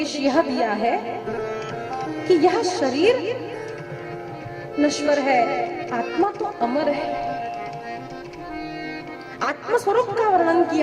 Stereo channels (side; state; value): both; identical; correlation 1.00